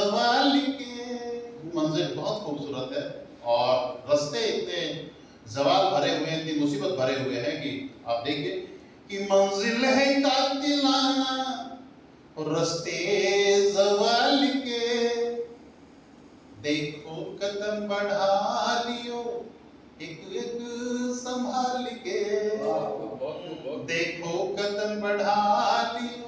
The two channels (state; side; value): identical; both; correlation 1.00